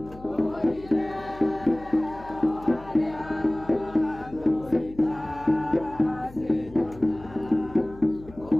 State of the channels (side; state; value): left; noise; hum, 19 dB below the sound